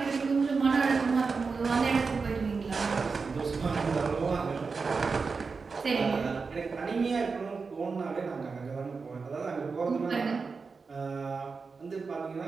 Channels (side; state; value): left; quieter; 4.7 dB